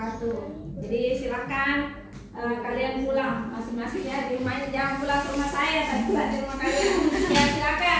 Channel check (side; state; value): both; identical; correlation 1.00